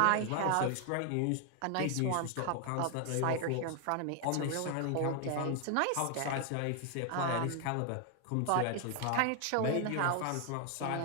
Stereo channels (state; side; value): different; both; correlation 0.00